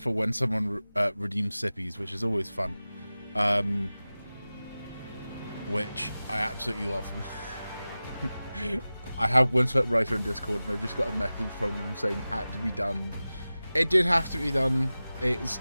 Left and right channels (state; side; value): inverted; both; correlation -0.96